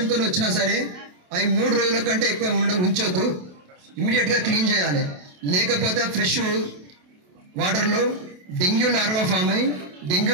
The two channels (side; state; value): left; late; 28 ms